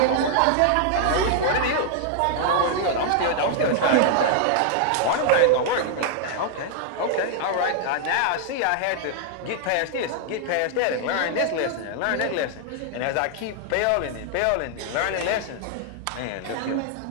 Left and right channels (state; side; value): different; both; correlation 0.00